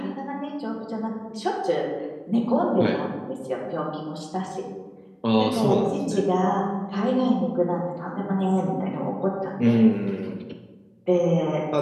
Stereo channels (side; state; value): both; identical; correlation 1.00